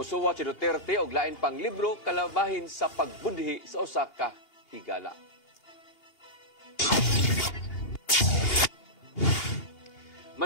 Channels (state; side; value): late; right; 2.8 ms